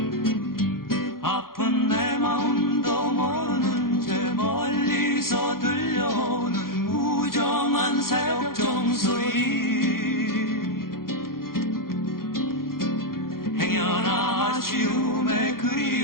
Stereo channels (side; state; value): right; late; 0.92 ms